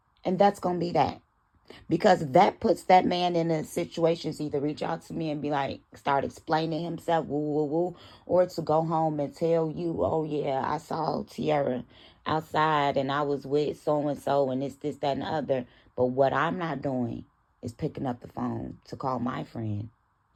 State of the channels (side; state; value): both; identical; correlation 1.00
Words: And that's gonna be that. Because that puts that man in a situation to either reach out to me and be like, start explaining himself, woo, or to go home and tell you, oh yeah, I saw Tiara outside and I was with so-and-so and this, that, and the other. But what I'm not doing is picking up the phone to call my friend